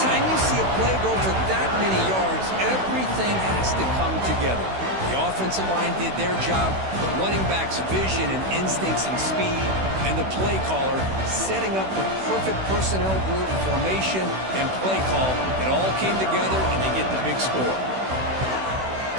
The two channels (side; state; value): left; late; 16 ms